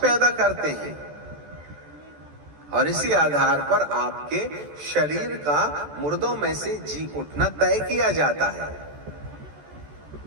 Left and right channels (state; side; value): late; left; 14 ms